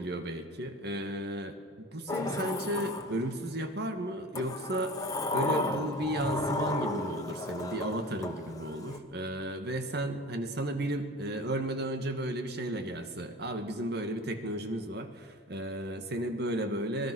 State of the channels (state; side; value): normal; both; correlation 0.38